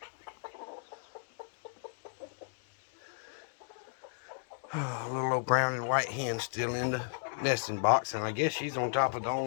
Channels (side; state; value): right; silent; digital silence